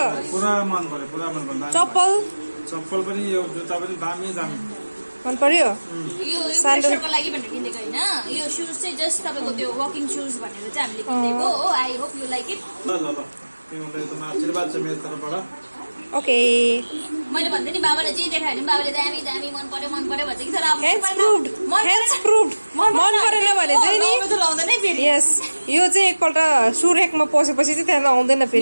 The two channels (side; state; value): both; inverted; correlation -1.00